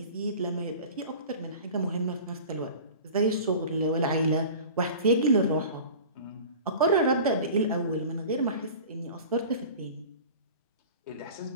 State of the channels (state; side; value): inverted; both; correlation -0.39